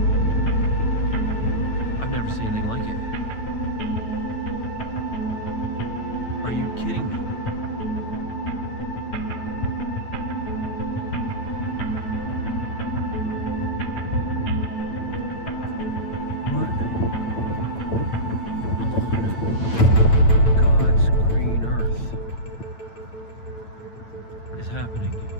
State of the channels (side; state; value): right; late; 9.0 ms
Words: I've never seen anything like it. Are you kidding me? What? God's green earth is happening.